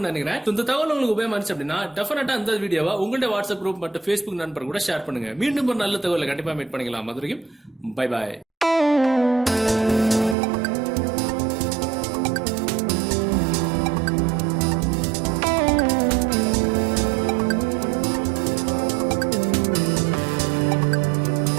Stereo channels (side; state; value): left; drops out; at 10.4 s